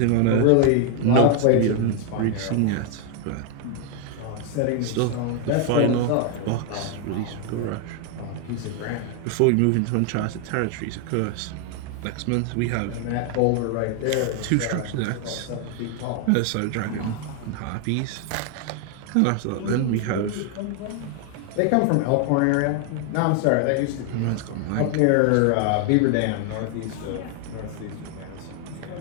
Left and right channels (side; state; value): both; different; correlation 0.00